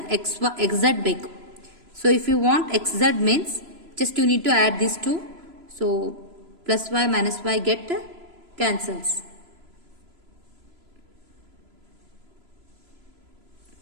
X Z ಬೇಕು. So if you want X Z means just you need to add this two. So plus Y minus Y get cancels.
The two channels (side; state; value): left; late; 3.0 ms